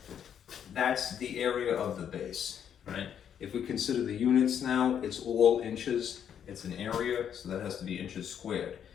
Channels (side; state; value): right; quieter; 8.8 dB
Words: That's the area of the base, right? If we consider the units now, it's all inches. It's an area, so that has to be inches squared.